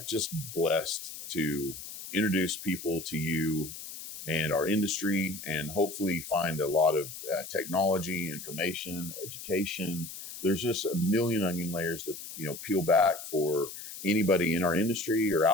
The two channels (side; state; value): left; noise; hiss, 11 dB below the sound